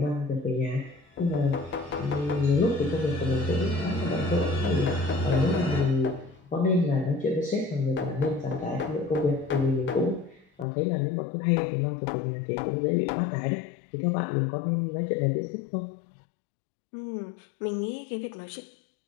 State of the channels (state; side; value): drops out; right; at 10.7 s